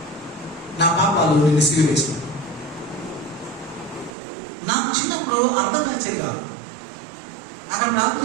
నా పాపాలు నేను సిలువేశాను. నాకు చిన్నప్పుడు అర్థం నచ్చేది కాదు. అక్కడ ప్రార్థన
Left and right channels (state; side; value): drops out; left; at 4.2 s